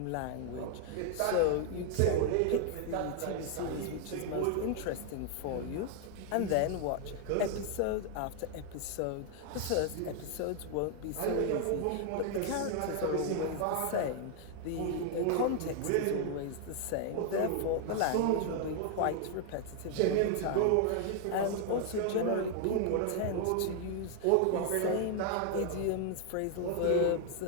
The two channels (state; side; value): different; both; correlation 0.00